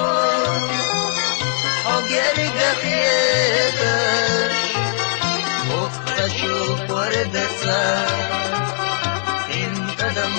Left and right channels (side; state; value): right; silent; digital silence